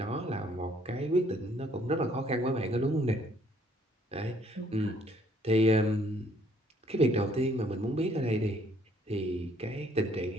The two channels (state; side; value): normal; both; correlation 0.64